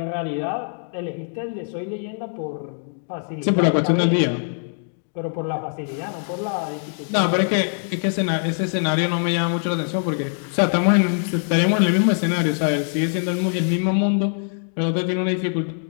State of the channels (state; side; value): silent; right; digital silence